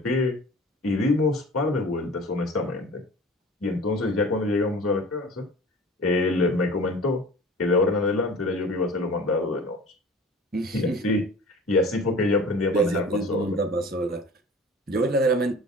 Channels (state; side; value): normal; both; correlation 0.42